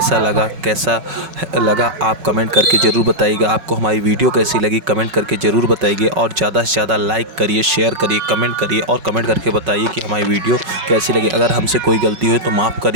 लगा आप कमेंट करके ज़रूर बताइएगा। आपको हमारी वीडियो कैसी लगी कमेंट करके ज़रूर बताइए और ज़्यादा से ज़्यादा लाइक करिए, शेयर करिए, कमेंट करिए और कमेंट करके बताइए कि हमारी वीडियो कैसी लगी। अगर हमसे कोई गलती हुई तो माफ़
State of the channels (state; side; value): late; left; 5.4 ms